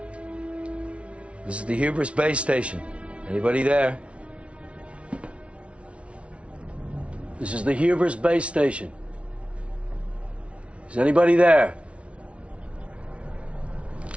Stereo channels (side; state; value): left; late; 0.061 ms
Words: This is the Hubris base station. Anybody there? This is the Hubris base station. Is anybody there?